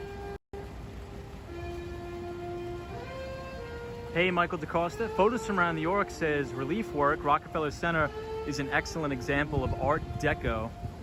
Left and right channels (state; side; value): identical; both; correlation 1.00